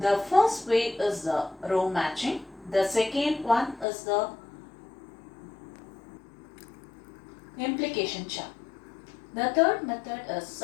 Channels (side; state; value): right; drops out; at 3.9 s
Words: first way is the row matching. The second one is the implication chart. The third method is